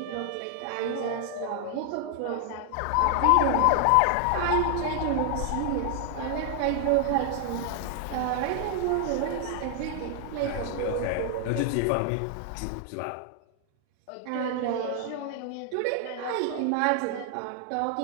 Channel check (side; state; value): both; different; correlation 0.00